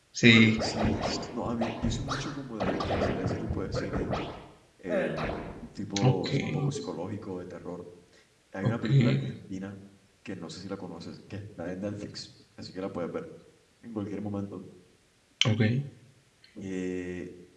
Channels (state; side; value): identical; both; correlation 1.00